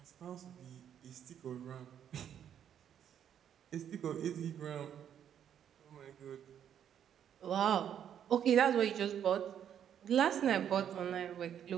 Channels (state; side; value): quieter; left; 9.3 dB